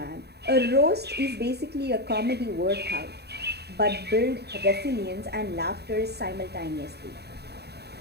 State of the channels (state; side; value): late; left; 0.48 ms